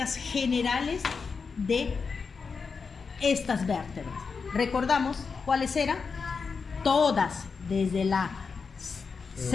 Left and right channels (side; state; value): right; quieter; 5.2 dB